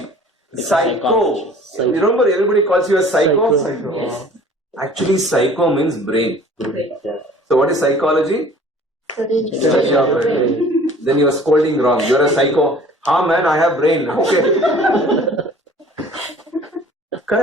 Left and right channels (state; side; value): normal; both; correlation 0.49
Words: Psycho. You remember everybody calls you a psycho? Yes. Actually, psycho means brain. So what is psychology? Study of brain. Then you are scolding wrong. You are a psycho. Ah man, I have brain. Okay.